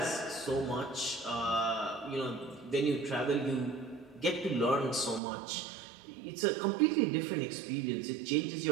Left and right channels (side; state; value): left; drops out; at 5.2 s